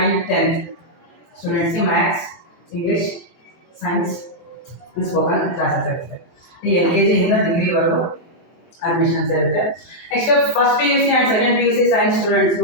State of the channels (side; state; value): right; late; 23 ms